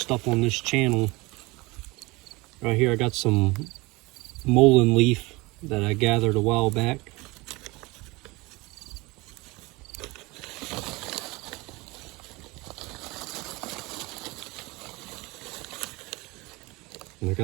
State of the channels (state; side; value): quieter; left; 23.5 dB